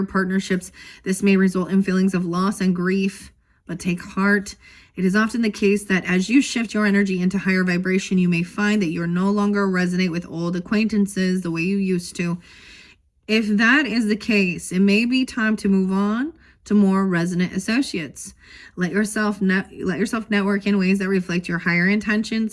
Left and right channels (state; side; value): identical; both; correlation 1.00